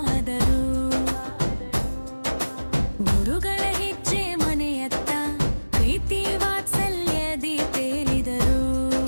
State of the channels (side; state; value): both; inverted; correlation -1.00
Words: ಗುರುಗಳ ಹೆಜ್ಜೆ ಮನೆಯತ್ತ ಪ್ರೀತಿ ವಾತ್ಸಲ್ಯದಿ ತೇಲಿದರು.